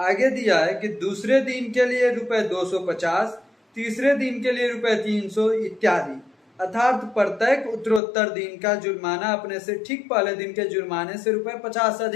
दिया है कि दूसरे दिन के लिए ₹250, तीसरे दिन के लिए ₹300 इत्यादि, अर्थात प्रत्येक उत्तरोत्तर दिन का जुर्माना अपने से ठीक पहले दिन के जुर्माने से ₹50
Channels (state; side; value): drops out; right; at 8.0 s